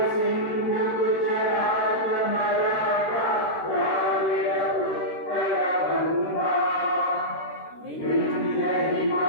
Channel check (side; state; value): right; late; 13 ms